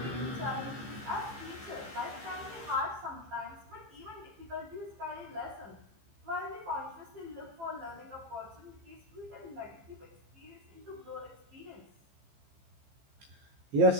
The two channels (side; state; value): left; late; 15 ms